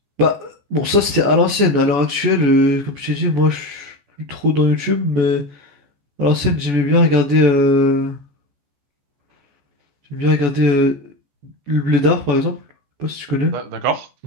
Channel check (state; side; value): late; left; 14 ms